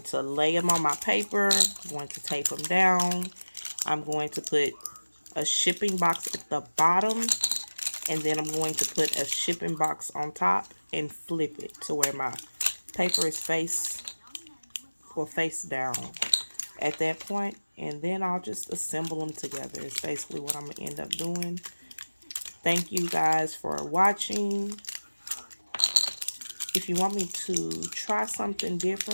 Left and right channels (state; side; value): inverted; both; correlation -1.00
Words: to lay them on my paper. I'm going to tape them down. I'm going to put a shipping box at the bottom, and then I'm going to put a shipping box on top and flip it to where my paper is face down. at that point, and then I'll just assemble them together. It's basically what I'm going to end up doing. Thank you guys for watching. If you want me to try something